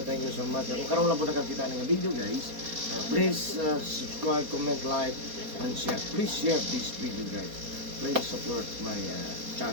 so much. Kung karoon lang po nakakita ng video guys, please subscribe, comment, like, and share. Please share this video guys. Please support my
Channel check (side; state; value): left; late; 4.2 ms